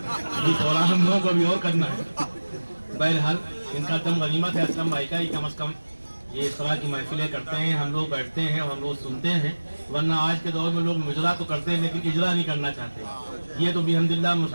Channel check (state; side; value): inverted; both; correlation -1.00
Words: پروگرام ہم لوگوں کو بھی اور کرنا ہے. بہرحال ان کا دم غنیمت ہے اسلم بھائی کا, یہ کم از کم یہ اس طرح کی محفلیں کرتے ہیں, ہم لوگ بیٹھتے ہیں اور ہم لوگ سنتے ہیں. ورنہ آج کے دور میں لوگ مجرا تو کرتے ہیں لیکن اجرا نہیں کرنا چاہتے. یہ تو بھی الحمدللہ